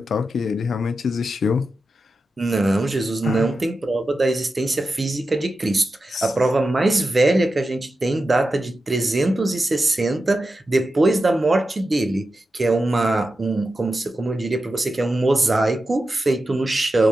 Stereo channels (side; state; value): both; normal; correlation 0.91